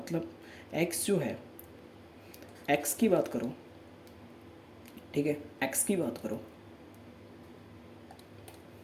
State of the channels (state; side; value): identical; both; correlation 1.00